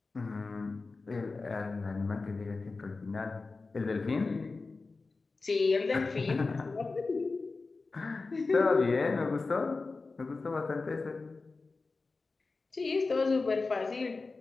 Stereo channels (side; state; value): right; quieter; 3.9 dB